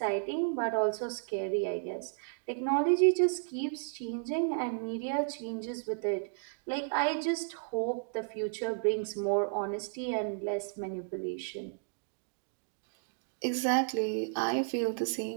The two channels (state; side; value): silent; left; digital silence